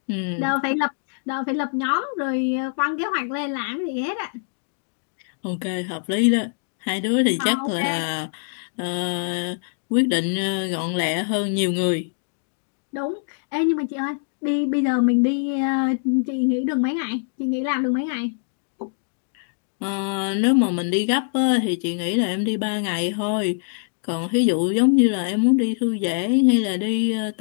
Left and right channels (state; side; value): silent; right; digital silence